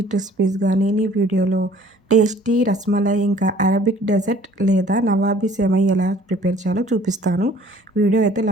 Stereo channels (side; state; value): both; normal; correlation 0.53